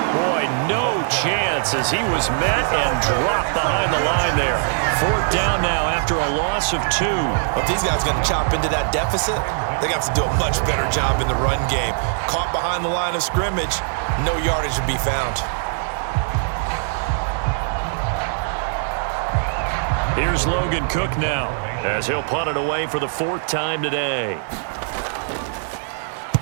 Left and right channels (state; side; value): silent; left; 59 dB below the other